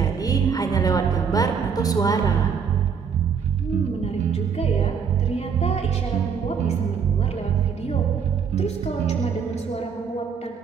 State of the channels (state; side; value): quieter; left; 6.5 dB